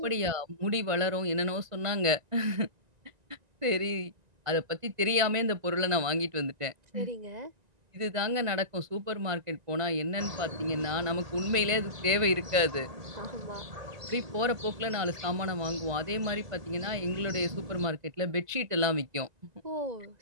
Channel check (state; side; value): late; left; 1.9 ms